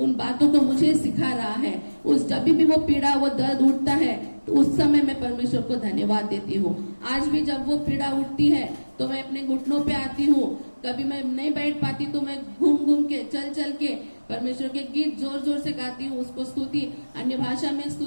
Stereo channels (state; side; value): inverted; both; correlation -1.00